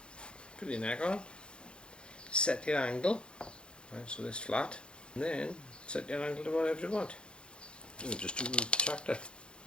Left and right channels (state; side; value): late; right; 0.054 ms